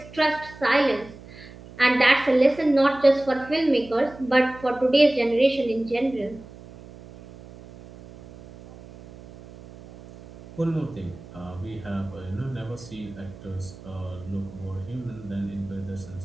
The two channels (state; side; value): noise; right; hum, 18 dB below the sound